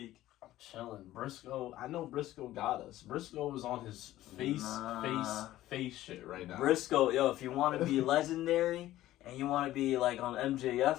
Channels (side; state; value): right; quieter; 14.8 dB